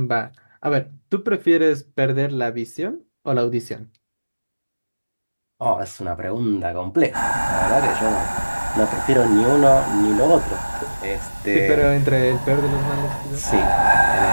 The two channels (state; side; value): inverted; both; correlation -1.00